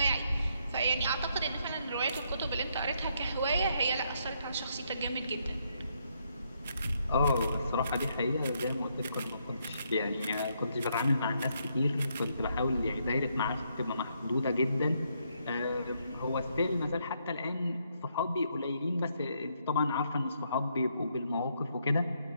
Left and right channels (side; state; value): both; inverted; correlation -0.75